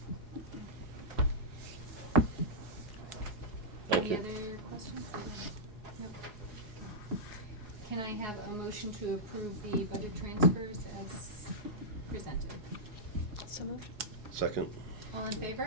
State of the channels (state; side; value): late; left; 4.8 ms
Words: Thank Any you. other questions? Nope. Can I have a motion to approve the budget transfers as presented? So moved. Second? All in